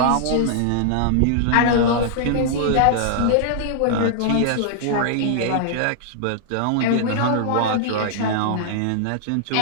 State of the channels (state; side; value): different; both; correlation -0.01